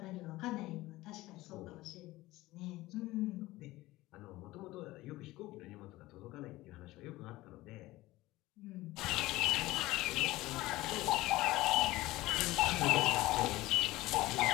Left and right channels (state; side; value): quieter; right; 18.3 dB